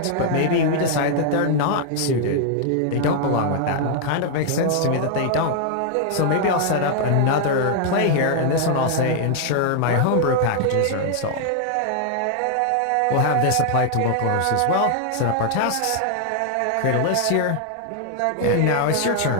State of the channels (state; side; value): different; both; correlation 0.00